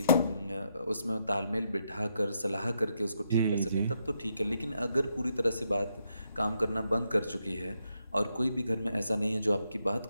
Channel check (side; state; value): both; inverted; correlation -0.80